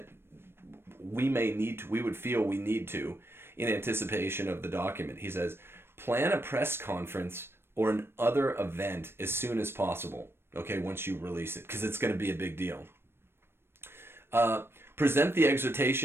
we would feel we need to in anticipation of the document. He says, plan a press conference or an other event as soon as possible. Okay, once you release it, because it's going to be a big deal. Present the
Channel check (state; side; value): late; left; 0.12 ms